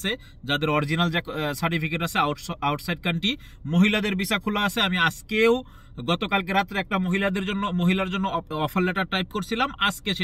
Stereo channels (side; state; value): both; identical; correlation 1.00